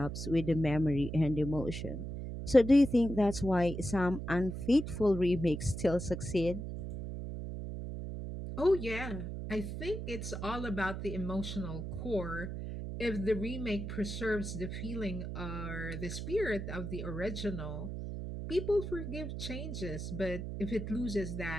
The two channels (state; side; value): noise; right; hum, 6 dB below the sound